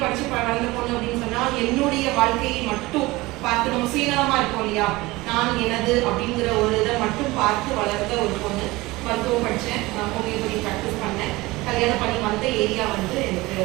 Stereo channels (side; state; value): left; quieter; 20.7 dB